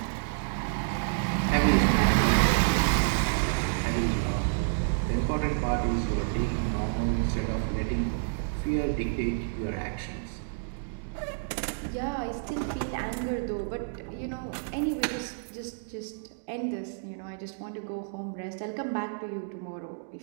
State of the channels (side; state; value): left; silent; digital silence